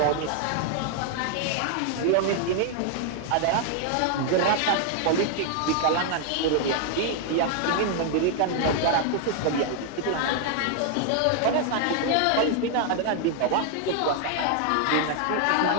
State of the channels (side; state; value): both; different; correlation 0.00